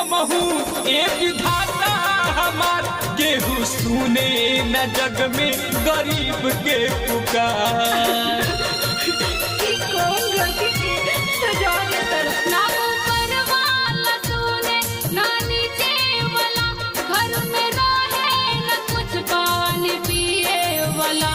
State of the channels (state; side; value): identical; both; correlation 1.00